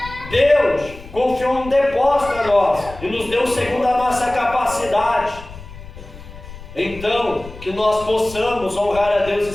Deus confiou um depósito a nós e nos deu segundo a nossa capacidade. Então, que nós possamos honrar a Deus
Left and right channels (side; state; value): left; noise; rumble, 16 dB below the sound